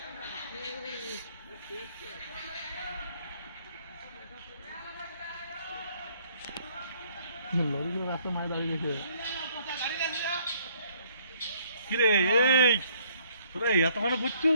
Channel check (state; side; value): inverted; both; correlation -0.63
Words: লরিগুলো রাস্তা মায় দাঁড়িয়ে গেছে। কিরে এই তোরা এত মানে বুঝছো?